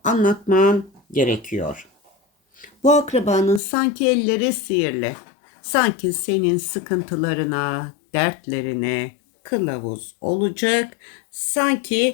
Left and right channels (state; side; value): drops out; right; at 3.6 s